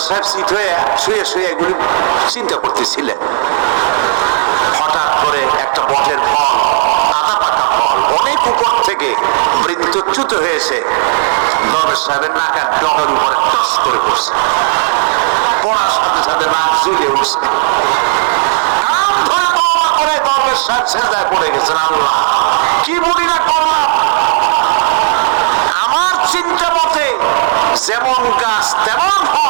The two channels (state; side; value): silent; left; digital silence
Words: সাহেব শীত হয়ে শুয়ে শুয়ে এগুলি চিন্তা করতেছিলেন। হঠাৎ করে একটা বটের ফল, আধা পাকা ফল, অনেক উপর থেকে বৃত্তচ্যুত হয়েছে দরবেশ সাহেবের নাকের ডগার উপরে টস করে পড়ছে। পড়ার সাথে সাথে নাক জ্বলে উঠছে, কান ধরে তওবা করে দরবেশ সাহেব সেজদায় পড়ে গেছেন। আল্লাহ কি বলি না করলাম, আমার চিন্তা মতে যেমন গাছ তেমন